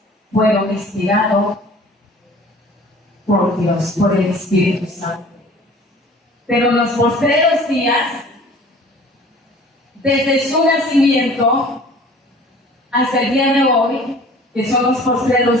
fueron inspirados por Dios, por el Espíritu Santo. Pero en los postreros días, desde su nacimiento hasta el día de hoy, que son los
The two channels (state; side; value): normal; both; correlation 0.48